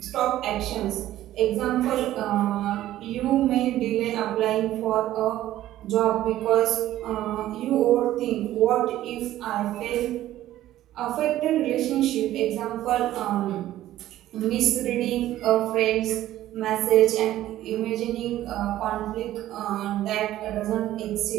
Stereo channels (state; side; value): quieter; left; 13.8 dB